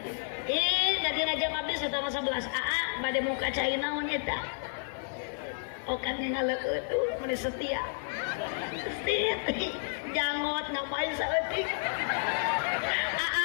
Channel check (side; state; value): right; silent; 57 dB below the other